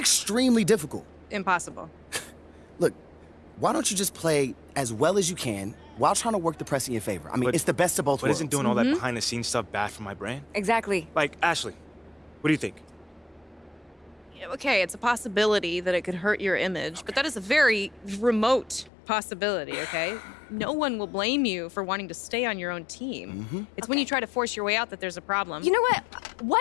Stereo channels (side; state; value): right; drops out; at 18.9 s